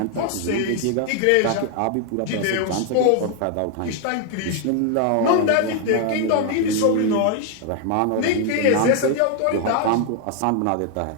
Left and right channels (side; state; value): both; different; correlation 0.00